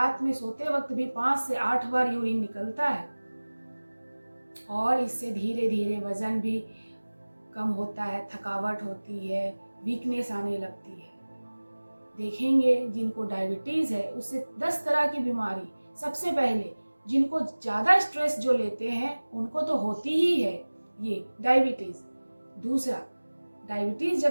में सोते वक्त भी 5 से 8 बार यूरिन निकलता है। और इससे धीरे धीरे वजन भी कम होता है, थकावट होती है, वीकनेस आने लगती है। देखेंगे जिनको डायबिटीज है उससे 10 तरह की बीमारी, सबसे पहले जिनको ज़्यादा स्ट्रेस जो लेते हैं उनको तो होती ही है ये डायबिटीज। दूसरा, डायबिटीज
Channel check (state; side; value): inverted; both; correlation -1.00